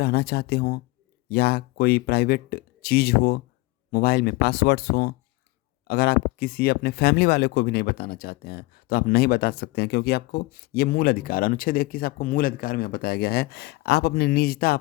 चाहते हो या कोई प्राइवेट चीज़ हो, मोबाइल में पासवर्ड्स हो, अगर आप किसी अपने फैमिली वाले को भी नहीं बताना चाहते हैं तो आप नहीं बता सकते हैं, क्योंकि आपको ये मूल अधिकार अनुच्छेद 21 आपको मूल अधिकार में बताया गया है। आप अपनी निजता,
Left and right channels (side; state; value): right; quieter; 22.2 dB